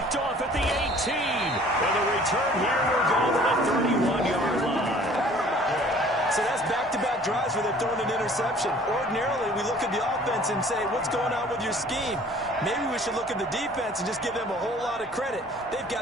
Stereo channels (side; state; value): both; normal; correlation 0.52